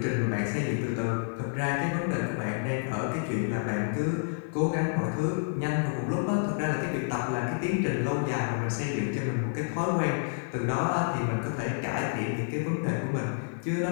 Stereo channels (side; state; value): right; silent; 58 dB below the other